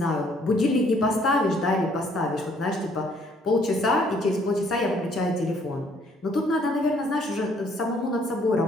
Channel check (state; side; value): normal; both; correlation 0.64